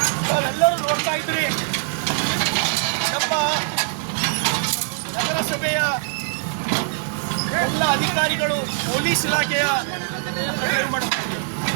ನಾವೆಲ್ಲರೂ ನೋಡ್ತಾ ಇದ್ರಿ, ನಮ್ಮ ನಗರಸಭೆಯ ಎಲ್ಲ ಅಧಿಕಾರಿಗಳು ಪೊಲೀಸ್ ಇಲಾಖೆಯ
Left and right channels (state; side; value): silent; left; digital silence